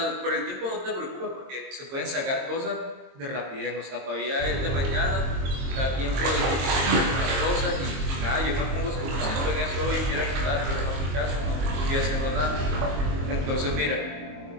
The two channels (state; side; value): late; left; 22 ms